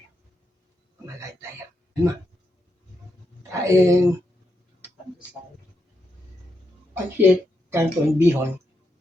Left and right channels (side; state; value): both; normal; correlation 0.83